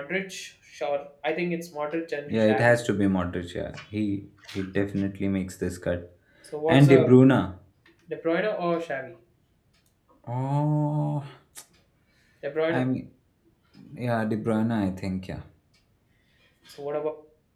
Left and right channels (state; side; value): identical; both; correlation 1.00